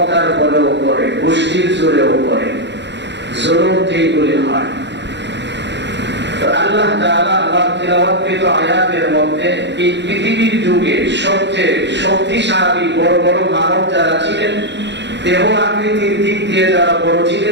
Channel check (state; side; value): late; left; 0.51 ms